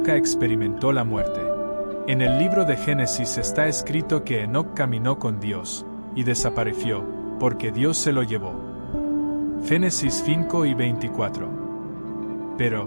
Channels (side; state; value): both; inverted; correlation -1.00